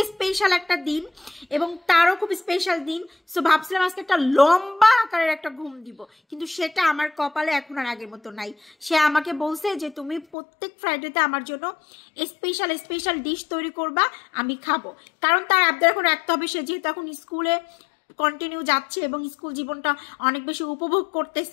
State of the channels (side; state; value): right; drops out; at 10.4 s